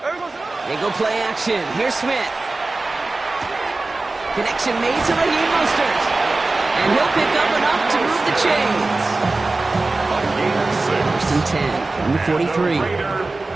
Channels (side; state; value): left; quieter; 3.3 dB